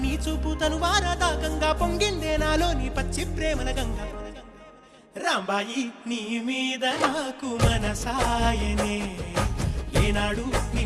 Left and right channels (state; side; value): identical; both; correlation 1.00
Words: చూపు తను వారదాకంగా పొంగిందే నాలో నీ పచ్చి ప్రేమల గంగా రాంబాయి నీ మీద నాకు మనసాయనే ఏనాడు